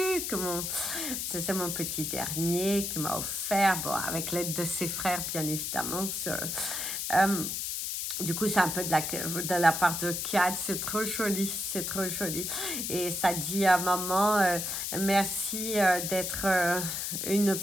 C'est mon petit dernier qui m'a offert, bon, avec l'aide de ses frères, bien évidemment. Du coup, c'est un peu de la part de Kat, c'est trop joli, c'est trop joli. Et ça dit à maman, merci d'être une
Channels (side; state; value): left; noise; hiss, 2 dB below the sound